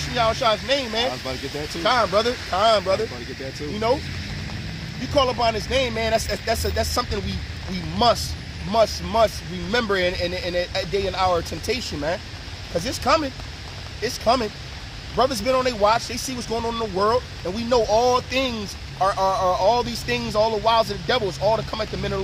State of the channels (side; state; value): both; identical; correlation 1.00